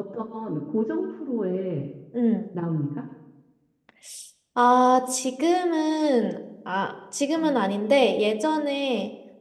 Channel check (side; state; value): both; identical; correlation 1.00